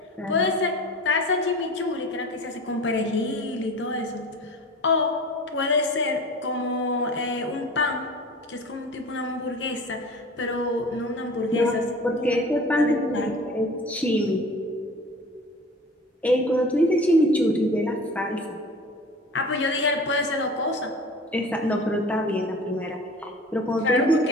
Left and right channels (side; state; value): both; normal; correlation 0.40